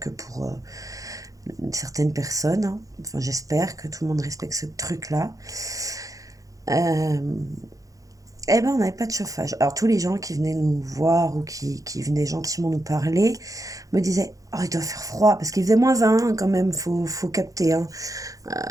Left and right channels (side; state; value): left; late; 0.17 ms